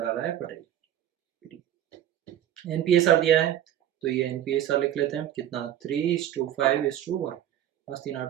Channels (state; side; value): quieter; left; 11.4 dB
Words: आ रहा है पटेल। एनपीएसआर दिया है तो ये एनपीएसआर लिख लेते हैं, कितना 3:5:1, मस्ती